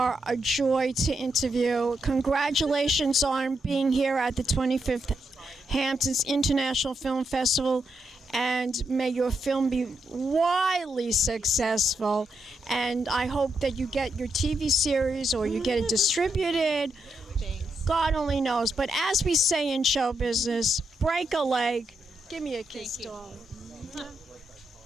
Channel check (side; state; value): both; normal; correlation 0.82